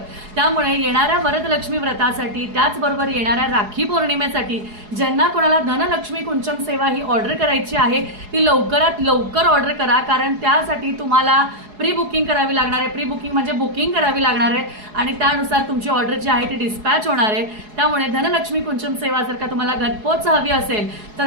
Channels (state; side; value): late; left; 4.8 ms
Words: त्यामुळे येणाऱ्या वरदलक्ष्मी व्रतासाठी त्याचबरोबर येणाऱ्या राखी पौर्णिमेसाठी ज्यांना कोणाला धनलक्ष्मी कुंचम सेवा ही ऑर्डर करायची आहे ती लवकरात लवकर ऑर्डर करा, कारण त्यासाठी तुम्हाला प्री बुकिंग करावी लागणार आहे. प्री बुकिंग म्हणजे बुकिंग करावी लागणार आहे आणि त्यानुसार तुमची ऑर्डर जी आहे ती डिस्पॅच होणार आहे. त्यामुळे धनलक्ष्मी कुंचम सेवा जर का तुम्हाला घरपोच हवी असेल